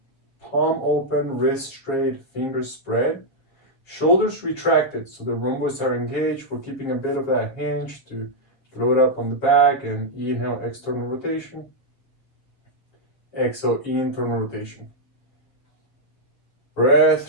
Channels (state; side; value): late; right; 7.4 ms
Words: Palm open, wrist straight, fingers spread. Shoulders retracted, so the rhomboids are engaged. We're keeping a bit of that hinge to load up on the back, and inhale, external rotation. Exhale, internal rotation. Breath,